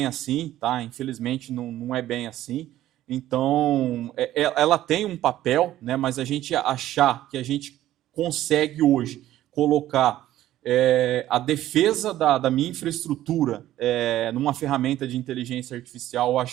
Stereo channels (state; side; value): quieter; left; 13.7 dB